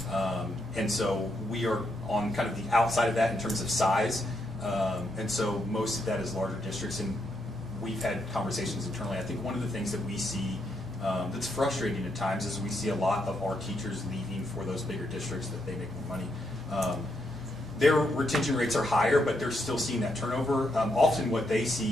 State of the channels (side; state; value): both; normal; correlation 0.79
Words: and so we are on kind of the outside of that in terms of size, and so most of that is larger districts, and we've had conversations internally. I think one of the things that we see that's frustrating at times is we see a lot of our teachers leaving for those bigger districts that they make more money. Their retention rates are higher, but they're still seeing that turnover. Often what they